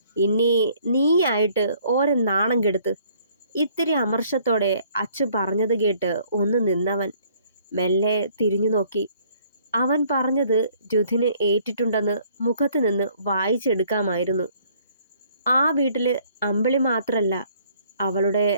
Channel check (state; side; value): inverted; both; correlation -0.61